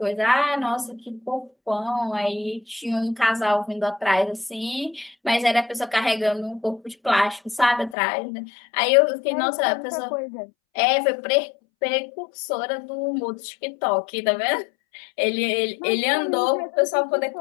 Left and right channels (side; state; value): right; drops out; at 8.0 s